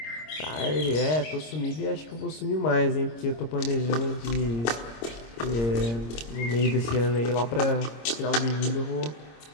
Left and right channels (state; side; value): late; right; 26 ms